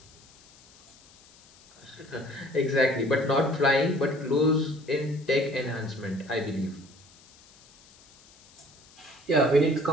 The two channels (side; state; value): left; noise; hiss, 26 dB below the sound